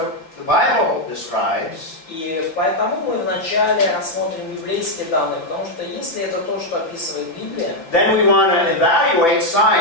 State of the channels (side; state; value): right; late; 5.9 ms